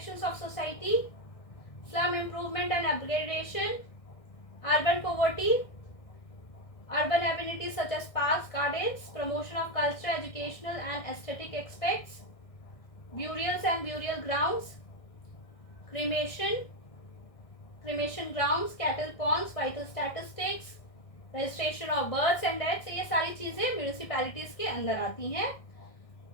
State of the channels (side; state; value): right; late; 1.6 ms